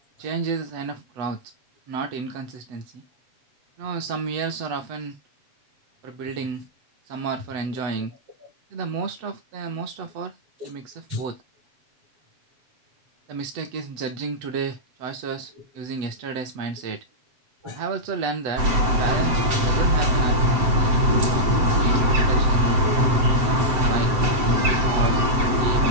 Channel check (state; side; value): late; left; 7.7 ms